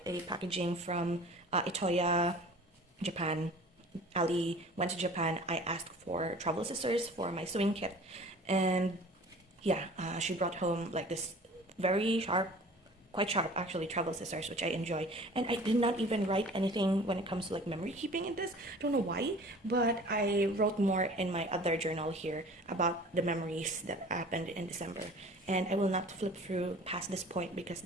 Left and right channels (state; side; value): normal; both; correlation 0.45